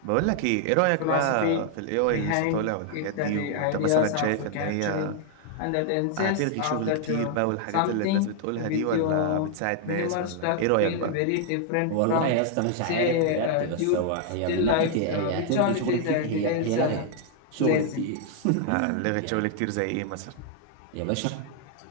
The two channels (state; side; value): different; both; correlation 0.00